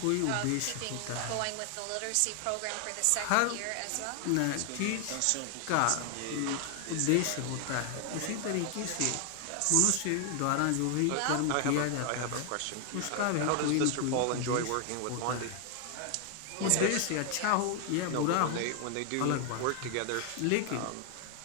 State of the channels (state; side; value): different; both; correlation 0.00